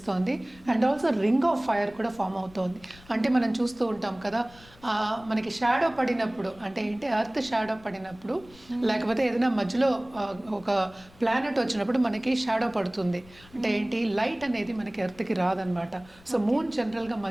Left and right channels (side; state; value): left; noise; rumble, 24 dB below the sound